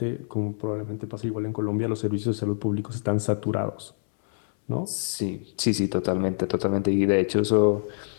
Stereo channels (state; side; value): silent; right; 61 dB below the other